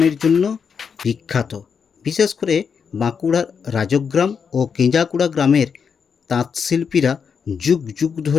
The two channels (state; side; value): quieter; right; 6.4 dB